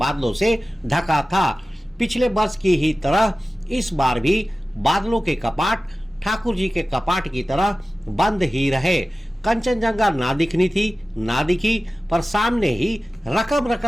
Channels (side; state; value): both; normal; correlation 0.96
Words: से ढका था। पिछले वर्ष की ही तरह इस बार भी बादलों के कपाट ठाकुर जी के कपाट की तरह बंद ही रहे। कंचनजंगा ना दिखी, पर सामने ही रकम